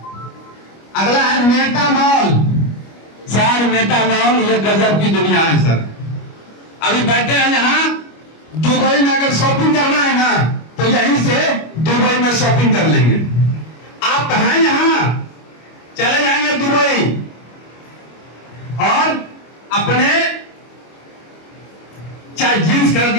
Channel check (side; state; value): right; late; 25 ms